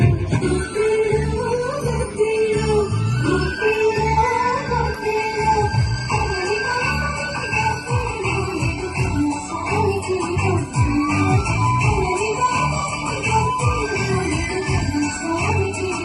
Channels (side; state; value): both; identical; correlation 1.00